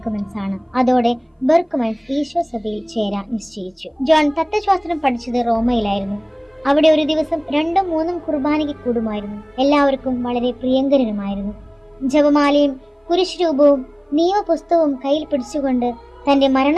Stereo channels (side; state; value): both; identical; correlation 1.00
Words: ആണ്. അതോടെ ബെർക്ക്മൻസ് ഈശോ സഭയിൽ ചേരാൻ നിശ്ചയിച്ചു. ജോൺ തത്വശാസ്ത്രം പഠിച്ചത് റോമയിലായിരുന്നു. അവിടെ ഒരു ദിവസം 2-3 കുർബാനയ്ക്ക് കൂടുമായിരുന്നു. എല്ലാവർക്കും വളരെ പ്രിയങ്കരനുമായിരുന്നു. ജപമാലയും കുരിശ് രൂപവും നിയമപുസ്തകവും കയ്യിൽ പിടിച്ചുകൊണ്ട് തന്റെ